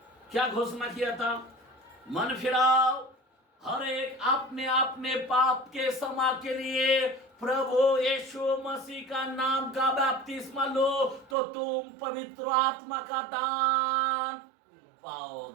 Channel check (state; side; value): drops out; left; at 11.4 s